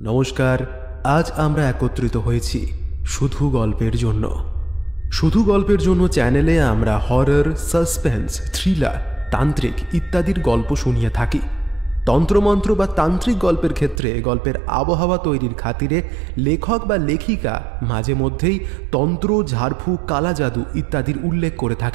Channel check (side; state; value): left; drops out; at 14.0 s